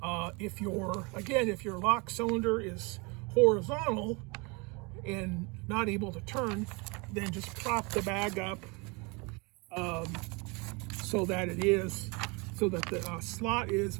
If your lock cylinder is horizontal and not able to turn, then just prop the bag up so that the slot is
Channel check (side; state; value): left; quieter; 28.8 dB